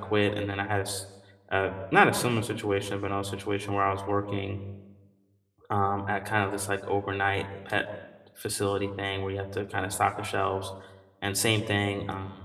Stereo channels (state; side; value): identical; both; correlation 1.00